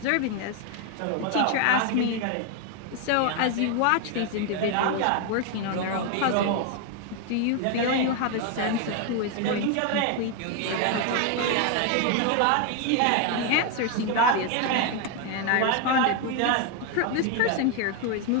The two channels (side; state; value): both; different; correlation 0.01